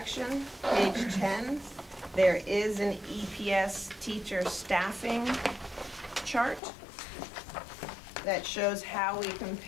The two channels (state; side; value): drops out; right; at 6.6 s